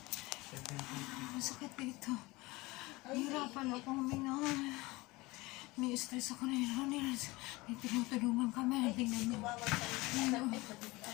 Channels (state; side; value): quieter; right; 22.1 dB